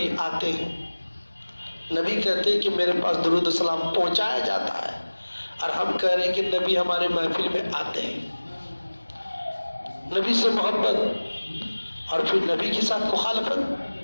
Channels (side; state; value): both; inverted; correlation -1.00